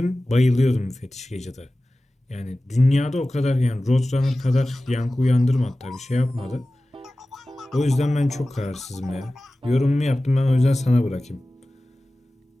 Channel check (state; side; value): normal; both; correlation 0.96